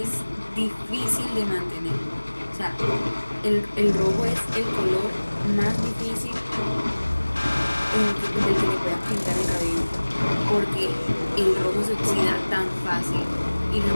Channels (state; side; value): inverted; both; correlation -1.00